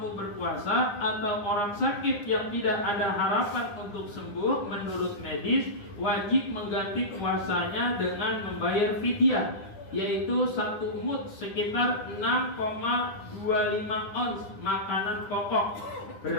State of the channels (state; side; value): late; right; 9.9 ms